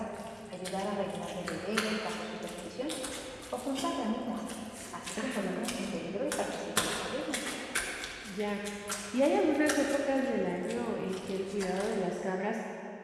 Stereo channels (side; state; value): both; identical; correlation 1.00